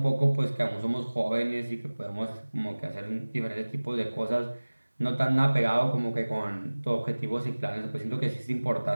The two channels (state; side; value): inverted; both; correlation -1.00